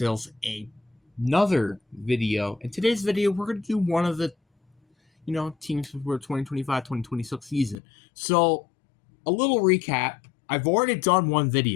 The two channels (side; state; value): right; drops out; at 7.8 s